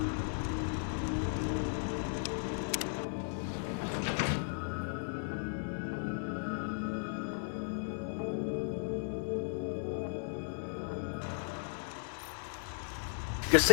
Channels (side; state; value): right; silent; digital silence